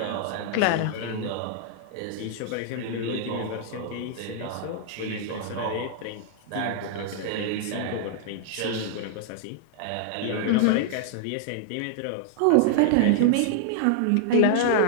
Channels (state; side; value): different; both; correlation -0.01